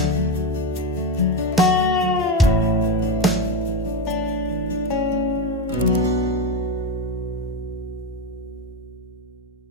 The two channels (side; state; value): both; normal; correlation 0.14